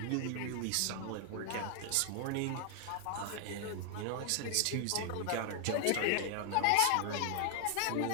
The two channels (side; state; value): both; different; correlation 0.00